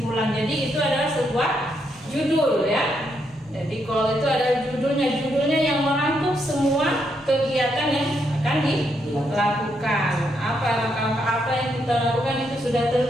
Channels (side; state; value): both; normal; correlation 0.78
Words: Jadi itu adalah sebuah judul ya. Jadi goal itu adalah judulnya yang merangkum semua kegiatan yang akan dilakukan. Apa langkah-langkah apa yang kita lakukan itu sudah